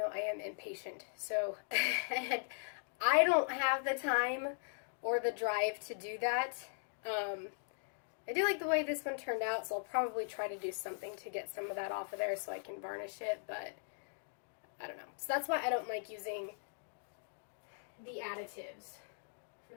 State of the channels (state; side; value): silent; right; digital silence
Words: I am impatient. So I don't have the time or the drive to do that. I do like the way this one turned out, so I'll probably try to do something to get some of that off of there so I can varnish it, but I don't know. So that's why I don't like using the additives, for